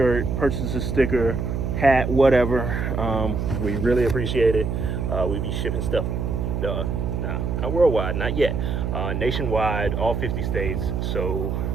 purchase a sticker, hat, whatever. We really appreciate it. We be shipping stuff, not worldwide, not yet, nationwide, all 50 states, so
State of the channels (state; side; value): noise; right; hum, 1 dB below the sound